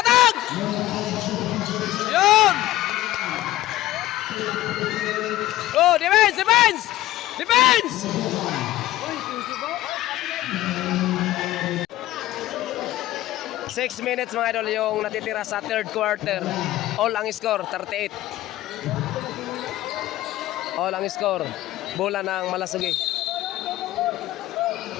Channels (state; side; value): quieter; right; 15.6 dB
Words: Yun! Oh, defense! 6 minutes mga idol yung natitira sa third quarter. All ang score, 38. All ang score. Bola ng Malasugi.